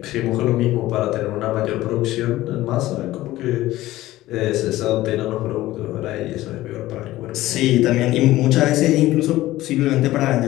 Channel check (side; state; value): right; quieter; 16.3 dB